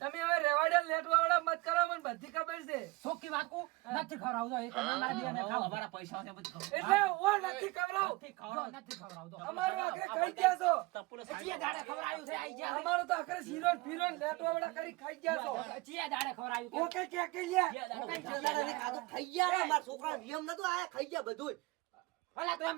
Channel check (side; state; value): left; quieter; 22.8 dB